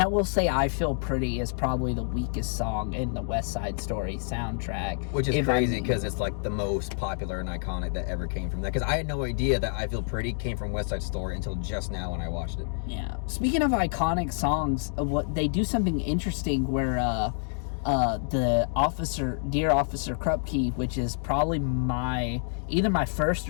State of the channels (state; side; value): silent; right; 60 dB below the other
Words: I will say, "I Feel Pretty" is probably the weakest song in the West Side Story soundtrack, which is crazy because it's like the most popular and iconic that ever came from that. Because I had no idea that "I Feel Pretty" came from West Side Story until just now when I watched it. Yeah. Speaking of iconic songs, what they do something interesting where the Dear Officer Krupke, which is probably either my first